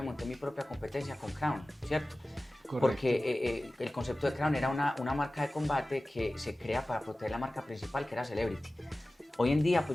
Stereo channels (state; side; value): normal; both; correlation 0.97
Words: monté mi propia competencia con Crown, ¿cierto? Correcto. Porque el concepto de Crown era una marca de combate que se crea para proteger la marca principal, que era Celebrity. Hoy en día, pues